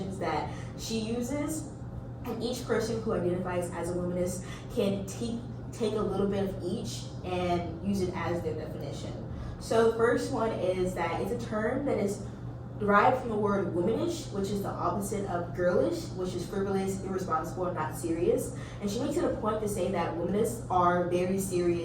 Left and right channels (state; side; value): identical; both; correlation 1.00